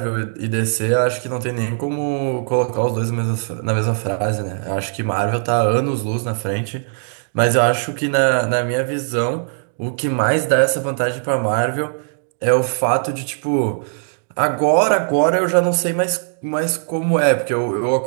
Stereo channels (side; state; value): left; silent; digital silence